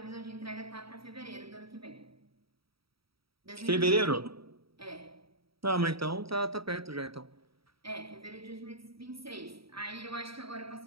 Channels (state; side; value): late; left; 0.75 ms